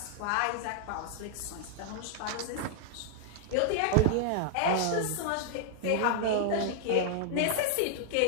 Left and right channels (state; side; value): different; both; correlation -0.01